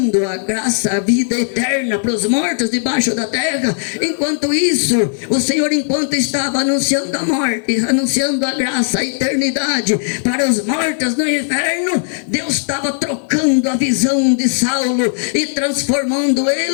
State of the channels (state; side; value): silent; right; digital silence